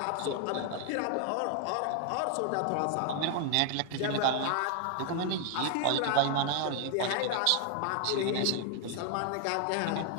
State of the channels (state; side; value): different; both; correlation 0.00